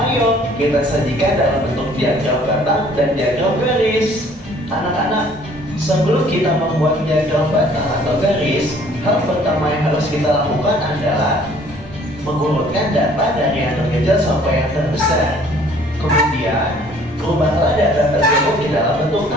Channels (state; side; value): normal; both; correlation 0.56